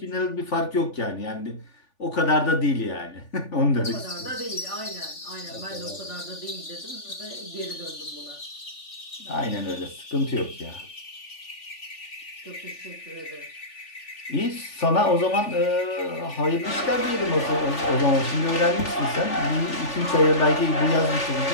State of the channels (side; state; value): right; late; 3.4 ms